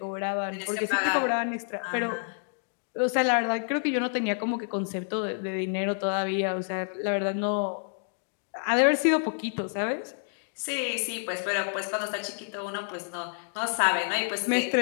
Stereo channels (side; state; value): right; silent; digital silence